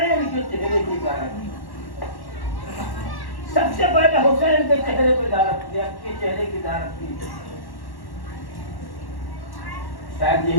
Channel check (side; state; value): right; late; 1.1 ms